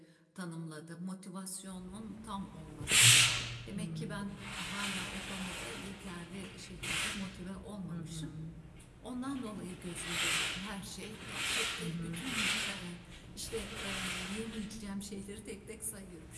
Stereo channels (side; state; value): both; identical; correlation 1.00